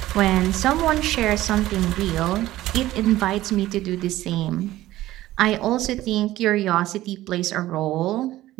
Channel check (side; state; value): left; quieter; 15.5 dB